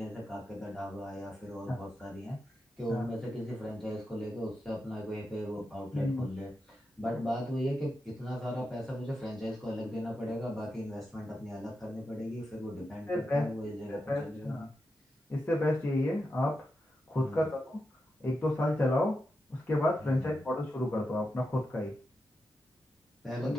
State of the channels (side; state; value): both; normal; correlation 0.88